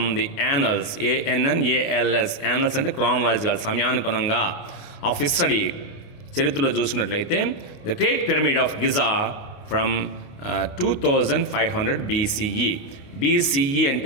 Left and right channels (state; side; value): late; right; 28 ms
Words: the annals, ANNALS, annals అంటే chronological, సమయానుగుణంగా, of history. చరిత్రలో చూసుకున్నట్లయితే the great pyramid of Giza from 2500 BCE